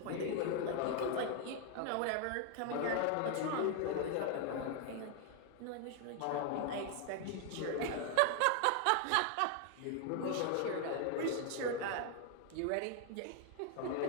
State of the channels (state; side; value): different; both; correlation 0.00